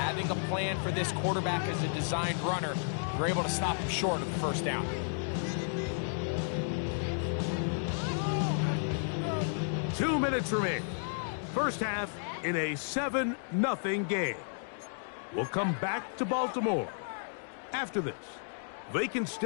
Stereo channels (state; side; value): silent; right; digital silence